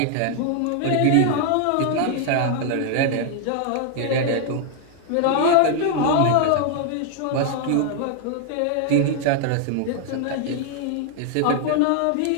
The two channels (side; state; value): both; different; correlation 0.00